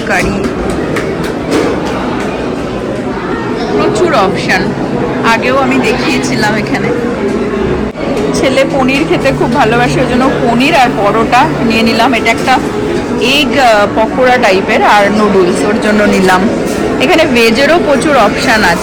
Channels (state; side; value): identical; both; correlation 1.00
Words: কারি, প্রচুর অপশান। আগেও আমি দেখিয়েছিলাম এখানে। ছেলে পনির খেতে খুব ভালোবাসে, ওই জন্য পনির আর পরোটা নিয়ে নিলাম। এটা একটা এগ পকোড়া টাইপের, আর নুডলস ওর জন্য নিলাম। এখানে ভেজেরও প্রচুর অপশান